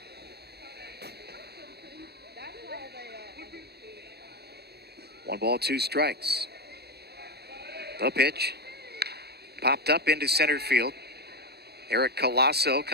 One ball, two strikes. The pitch. Popped up into center field. Eric Colasso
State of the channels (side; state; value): left; late; 0.47 ms